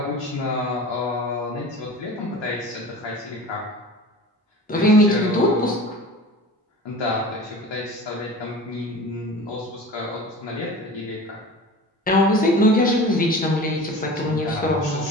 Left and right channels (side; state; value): both; normal; correlation 0.37